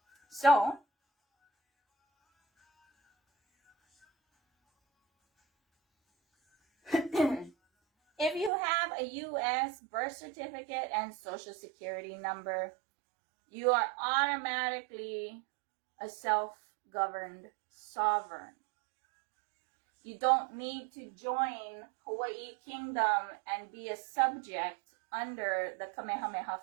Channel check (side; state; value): left; drops out; at 8.5 s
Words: So, if you have a U.S. birth certificate and social security number, you are automatically a self-governed sovereign. You don't need to join Hawaii Kingdom and be a subject under the Kamehameha